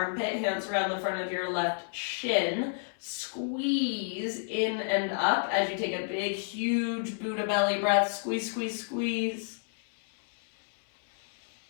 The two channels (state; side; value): silent; right; 58 dB below the other